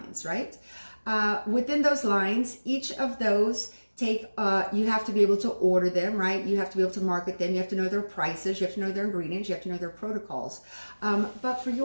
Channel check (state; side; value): inverted; both; correlation -1.00